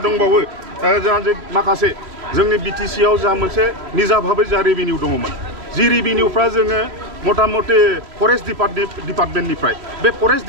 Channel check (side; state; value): left; late; 3.1 ms